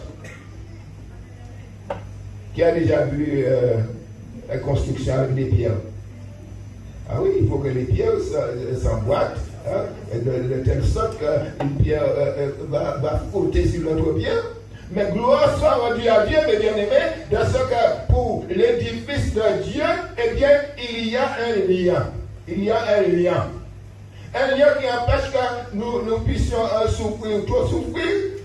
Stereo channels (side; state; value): both; identical; correlation 1.00